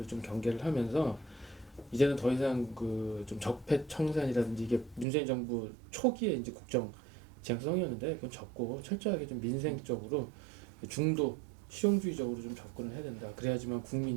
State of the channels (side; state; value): left; drops out; at 5.1 s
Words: 좀 경계를 하면서 이제는 더 이상 그 좀 적폐 청산이라든지 이게 문재인 정부 초기에 이제 국정 지향성이었는데 그건 접고 철저하게 좀 민생적으로 중도 실용주의적으로 좀 접근을 해야 된다. 그래야지만